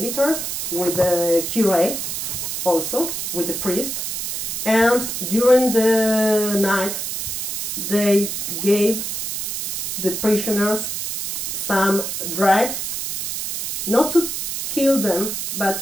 with the curé, also with the priest, and during the night they gave the prisoners some drug, not to kill them,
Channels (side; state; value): right; noise; hiss, 3 dB below the sound